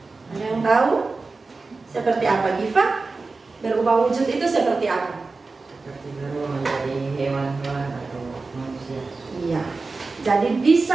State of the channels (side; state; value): left; quieter; 3.9 dB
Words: Ada yang tahu? Seperti apa, Giva? Berubah wujud itu seperti apa? Seperti berubah menjadi hewan-hewan atau manusia. Iya. Jadi